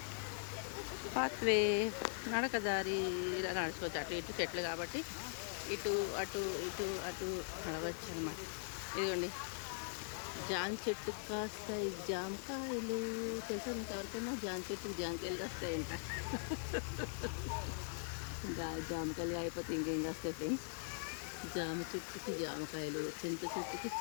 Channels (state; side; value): silent; right; digital silence